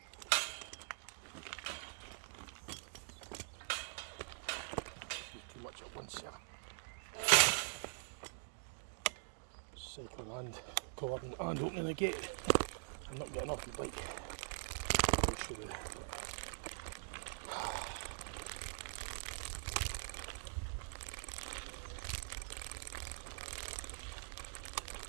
Too much at once here. Cycling and cordon and opening the gate. I'm not getting off my bike. I should have.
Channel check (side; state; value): left; silent; digital silence